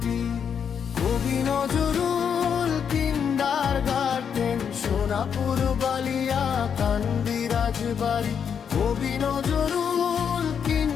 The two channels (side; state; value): right; quieter; 7.4 dB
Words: কবি নজরুল কিন্ডারগার্টেন, সোনাপুর বালিয়া কান্দি রাজবাড়ি। কবি নজরুল